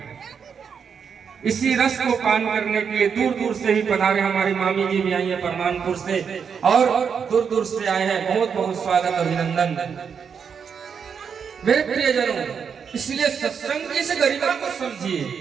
इसी रस को पान करने के लिए दूर दूर से ही पधारे हमारी मामी जी भी आई है परमानपुर से, और दूर दूर से आए हैं। बहुत बहुत स्वागत, अभिनंदन मेरे प्रियजनों। इसलिए सत्संग की इस गरिमा को समझिए।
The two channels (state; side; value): quieter; left; 6.7 dB